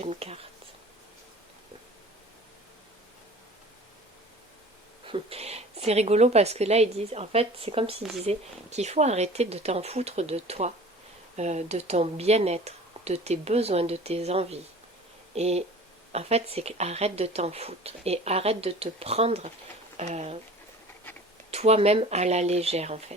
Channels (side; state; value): both; normal; correlation 0.43